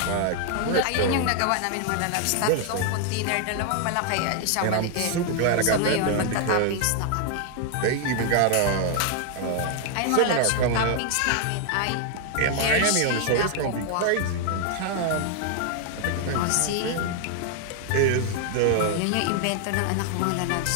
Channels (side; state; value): both; different; correlation 0.00